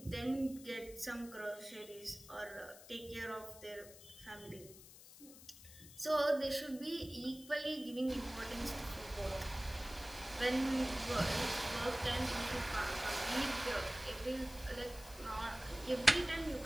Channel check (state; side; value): noise; left; hiss, 18 dB below the sound